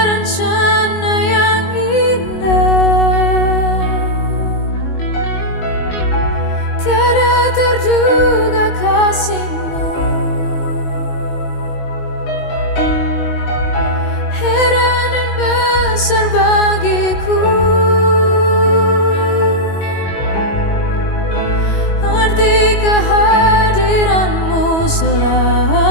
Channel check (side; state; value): right; late; 21 ms